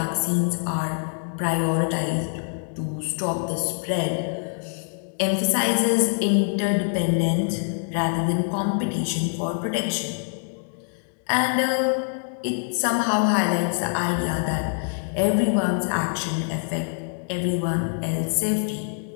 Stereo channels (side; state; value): right; silent; 62 dB below the other